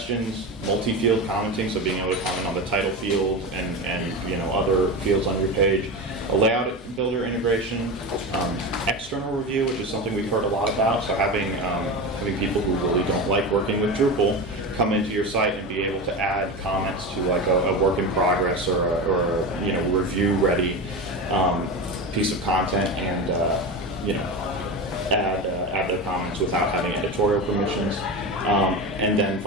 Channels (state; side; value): normal; both; correlation 0.23